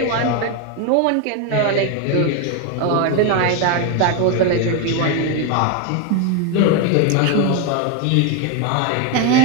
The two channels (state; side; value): different; both; correlation 0.01